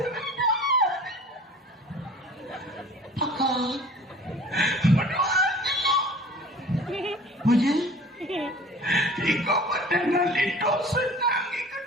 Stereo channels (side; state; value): both; normal; correlation 0.45